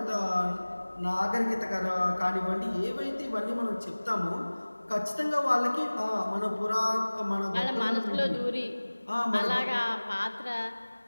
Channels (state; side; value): inverted; both; correlation -1.00